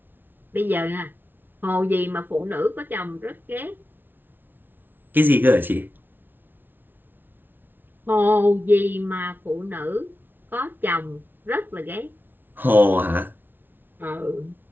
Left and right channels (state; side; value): late; left; 0.095 ms